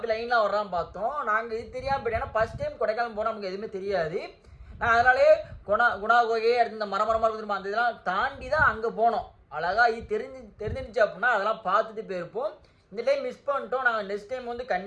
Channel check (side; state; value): both; identical; correlation 1.00